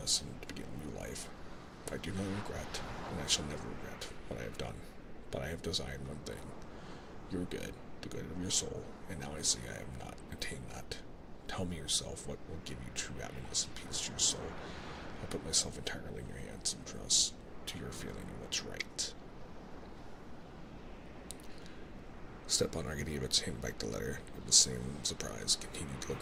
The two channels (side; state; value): both; identical; correlation 1.00